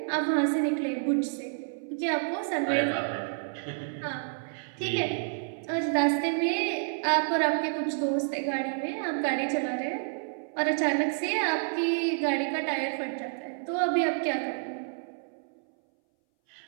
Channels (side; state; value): left; silent; 58 dB below the other